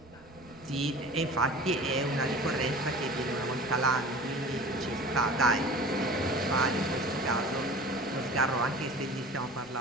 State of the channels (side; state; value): right; noise; rumble, 24 dB below the sound